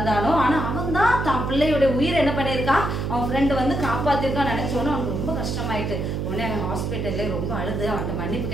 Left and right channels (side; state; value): right; noise; hum, 2 dB below the sound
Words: ஆனா அவன் தான் தான் பிள்ளையோட உயிரை என்ன பண்ணியிருக்கான் அவன் ஃப்ரெண்டு வந்து காப்பாத்திருக்கான் நினைச்சோன்னு அவனுக்கு ரொம்ப கஷ்டமாயிட்டு. உடனே அவன் ஹாஸ்பிட்டல்ல ரொம்ப அழுது அவன்கிட்ட மன்னிப்பு